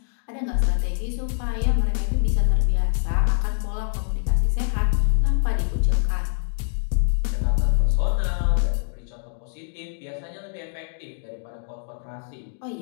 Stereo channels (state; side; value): silent; right; digital silence